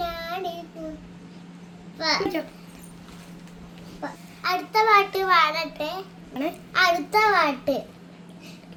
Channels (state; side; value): identical; both; correlation 1.00